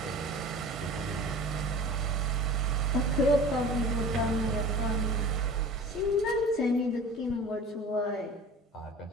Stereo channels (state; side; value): normal; both; correlation 0.41